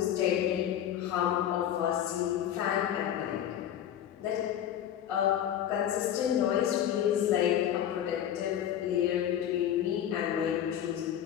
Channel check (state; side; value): quieter; right; 10.5 dB